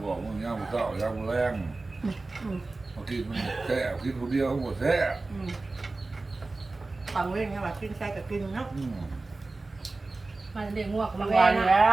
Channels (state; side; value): quieter; left; 3.3 dB